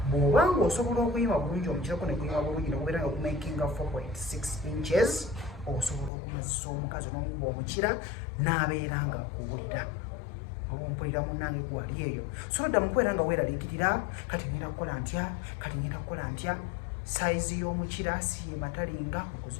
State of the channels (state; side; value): drops out; right; at 6.1 s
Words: bw'obanga osobola okuyima bulungi omukirako ne kuyima bulungi nokubeera nga kumakinga 4.6 inches osobola okumazisa omukazi n'omukuba omukira n'abeera nga akuwulira ompulira munnange gwali eyo so dda mukubeera nga weeraliikirira kati ngenda kukola ntya kati ngenda kukola ntya saizi y'omukira siye matalinga